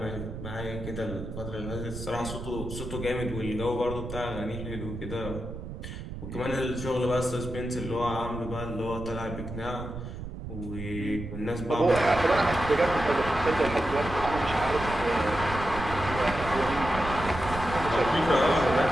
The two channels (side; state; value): right; noise; rumble, 9 dB below the sound